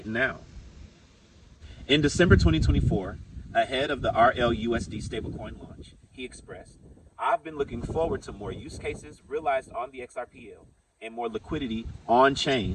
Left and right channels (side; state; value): both; identical; correlation 1.00